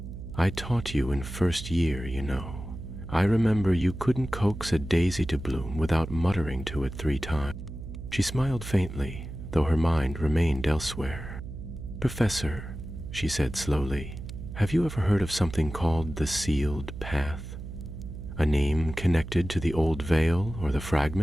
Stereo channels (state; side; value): noise; right; hum, 10 dB below the sound